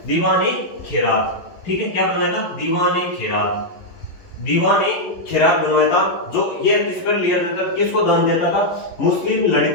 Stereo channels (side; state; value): right; late; 11 ms